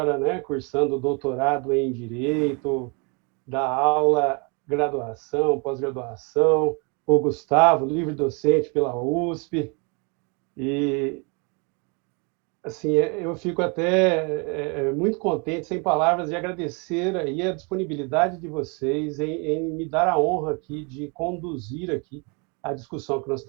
né, cursando doutorado em direito, dá aula, graduação, pós-graduação. O Gustavo, livre docente pela USP. E assim, eu fico até muito contente, sem palavras, de agradecer aí a disponibilidade de vocês em me dar a honra aqui de conduzir aqui a discussão que nós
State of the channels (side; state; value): left; quieter; 32.8 dB